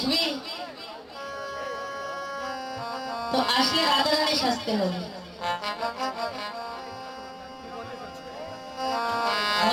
তো আসলে রাধারানী সাজতে হবে,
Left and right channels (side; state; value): both; identical; correlation 1.00